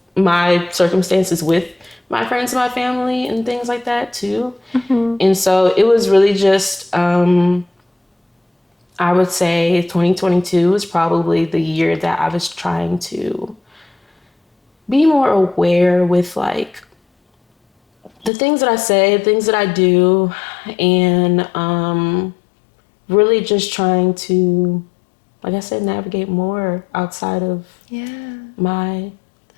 my circumstances with my friends and my family and things like that too. And so it was really just I would say 2022 was probably the year that I was trying to be more aware with like the things that I say, things that I do, and really just trying to, like I said, navigate more outside of my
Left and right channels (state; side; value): drops out; right; at 18.3 s